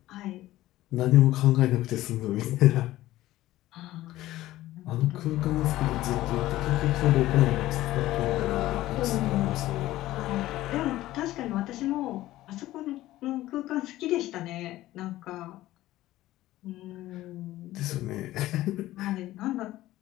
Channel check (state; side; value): quieter; right; 15.8 dB